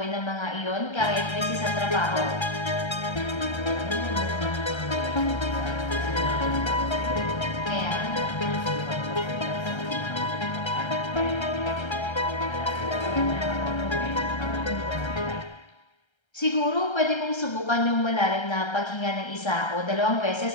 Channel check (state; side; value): late; right; 1.3 ms